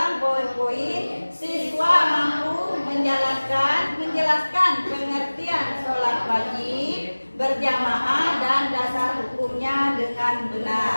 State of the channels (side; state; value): both; inverted; correlation -1.00